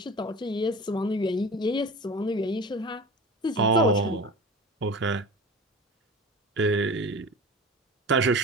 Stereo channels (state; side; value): normal; both; correlation 0.35